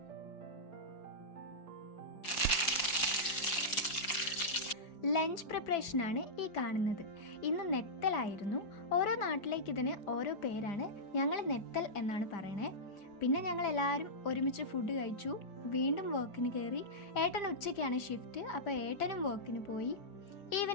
ലഞ്ച് പ്രിപ്പറേഷനാണ് ഈ കാണുന്നത്. ഇന്ന് നെത്തലായിരുന്നു. ഓരോ നാട്ടിലേക്ക് ഇതിന് ഓരോ പേരാണ്. ഞങ്ങൾ നെത്തൽ എന്നാണ് പറയണേ. പിന്നെ ഞങ്ങൾ എല്ലാവരും ഒരുമിച്ച് ഫുഡ് കഴിച്ചു, വീണ്ടും വർക്കിന് കയറി. ഏട്ടൻ ഉച്ചയ്ക്കാണ് ഷിഫ്റ്റ്, അപ്പോൾ ഏട്ടനും വർക്കിന് പോയി.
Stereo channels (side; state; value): right; late; 4.9 ms